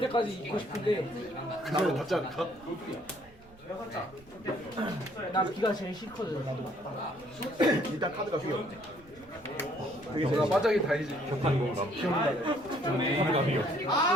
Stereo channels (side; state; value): right; noise; rumble, 25 dB below the sound